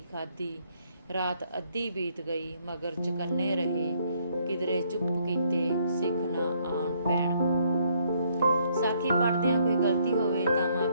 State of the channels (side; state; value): both; inverted; correlation -0.69